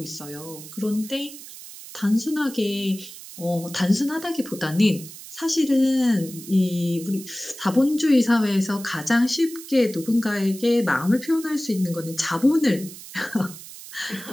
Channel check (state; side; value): noise; right; hiss, 15 dB below the sound